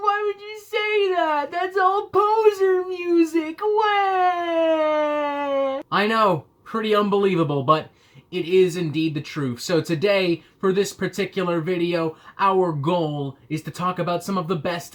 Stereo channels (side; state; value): both; identical; correlation 1.00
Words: why would you say that? That's all poser music. Wah! I know, pretty unbelievable, but it is indeed the truth. So today, for this particular video, our goal is to talk about some of the